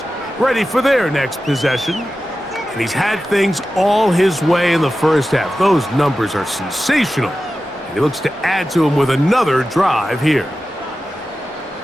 ready for their next possession. And he's had things all his way in the first half. Those numbers are sensational. And he looks to add to them with another drive here.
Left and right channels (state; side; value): normal; both; correlation 0.93